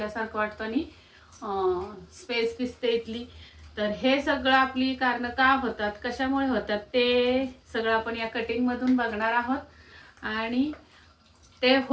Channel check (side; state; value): both; identical; correlation 1.00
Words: वाटतं आणि स्पेस दिसते इथली। तर हे सगळं आपली कारण का होतात, कशामुळे होतात ते सगळं आपण या कटिंग मधून बघणार आहोत आणि ते